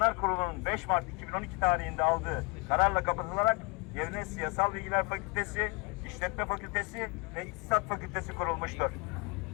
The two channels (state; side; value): quieter; right; 29.9 dB